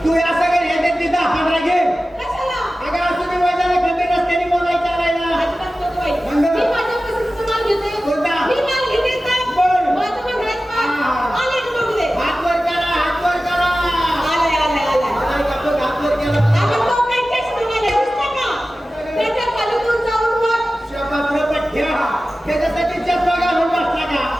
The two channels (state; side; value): normal; both; correlation 0.95